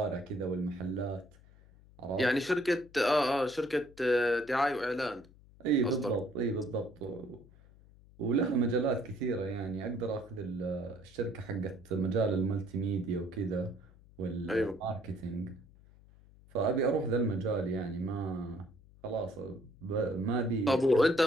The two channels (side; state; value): left; noise; hum, 24 dB below the sound